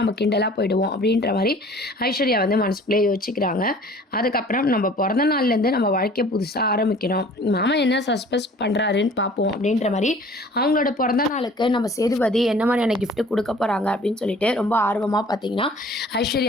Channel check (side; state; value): both; normal; correlation 0.49